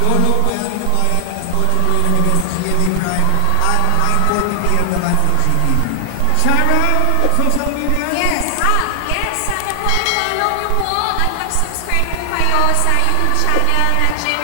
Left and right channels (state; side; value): different; both; correlation 0.00